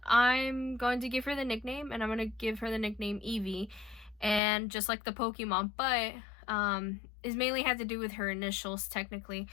I'm going to give her the nickname, and I'm going to give her the nickname Evie, and just like the Pokemon, but it mainly had to do with her initials technically,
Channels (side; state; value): right; drops out; at 4.4 s